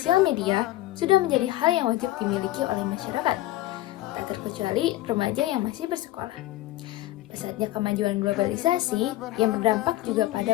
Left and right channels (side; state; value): right; quieter; 15.9 dB